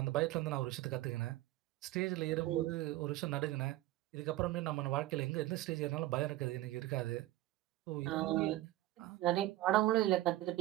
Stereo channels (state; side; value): quieter; left; 16.2 dB